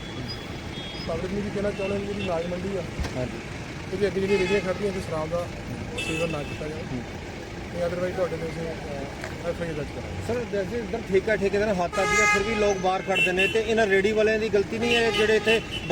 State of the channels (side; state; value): both; identical; correlation 1.00